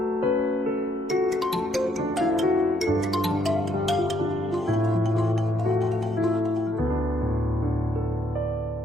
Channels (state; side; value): normal; both; correlation 0.71